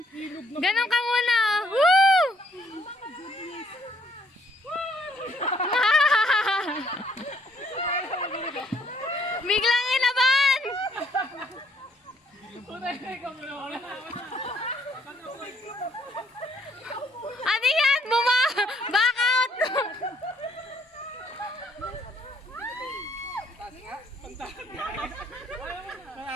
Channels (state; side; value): normal; both; correlation 0.67